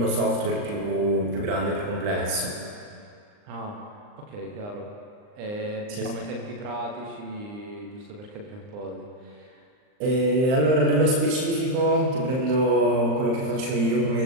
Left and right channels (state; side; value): late; left; 39 ms